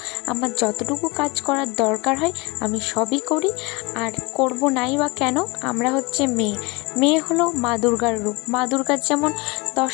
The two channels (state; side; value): quieter; right; 25.7 dB